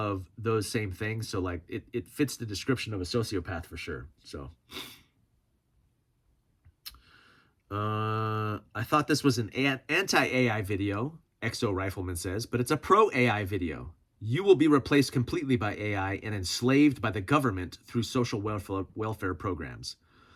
those same things. So like it fits the description of a sociopath for sure. So I thought this was an anti-AI video, Exo Rifleman says, but it's a pro-AI video. You will be replaced completely by AI and enslaved by the government through social welfare programs.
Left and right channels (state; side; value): identical; both; correlation 1.00